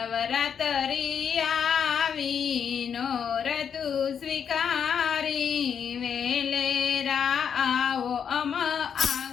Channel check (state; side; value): quieter; right; 7.5 dB